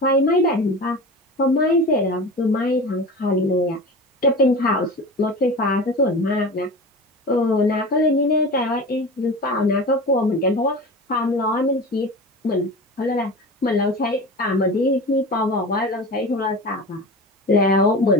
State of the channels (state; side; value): normal; both; correlation 0.32